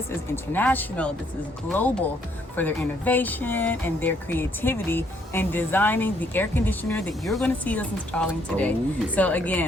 is international. This is global for their innovation and their creativity in designing the air conditioner that you're going to see us installing today. So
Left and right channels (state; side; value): normal; both; correlation 0.69